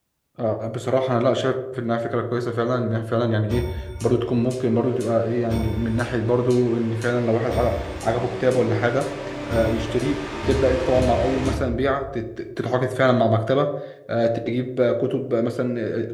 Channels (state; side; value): identical; both; correlation 1.00